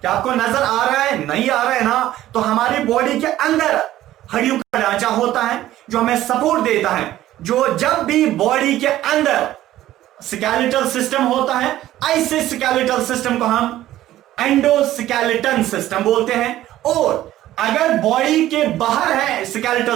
क्या आपको नजर आ रहा है? नहीं आ रहा है ना? तो हमारी बॉडी के अंदर हड्डियों का ढांचा होता है जो हमें सपोर्ट देता है। जो जब भी बॉडी के अंदर स्केलेटल सिस्टम होता है, ऐसे स्केलेटल सिस्टम को हम एंडोस्केलेटन सिस्टम बोलते हैं। और अगर बॉडी के बाहर है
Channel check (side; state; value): left; quieter; 14.1 dB